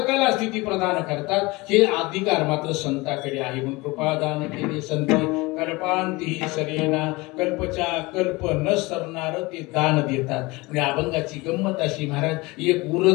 स्थिती प्रदान करतात. हे अधिकार मात्र संताकडे आहे. म्हणून कृपादान केले संती कल्पांतीही सरेना. कल्पच्या कल्प न सरणार ते दान देतात. म्हणजे अभंगाची गंमत अशी महाराज, एक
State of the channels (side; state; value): right; quieter; 23.2 dB